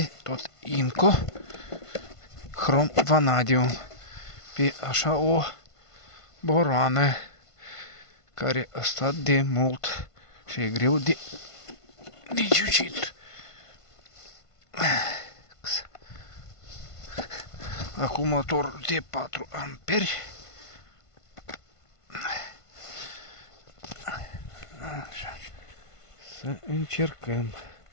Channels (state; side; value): late; right; 1.5 ms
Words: tot Inco Chrome Vanadium pe așa o boroană care a stat de mult și e greu de ciucit. Acumulator de 4 amperi. Așa. Să încercăm